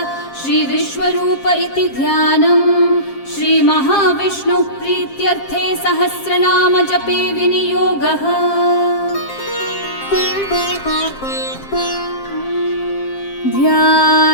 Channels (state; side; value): late; right; 7.5 ms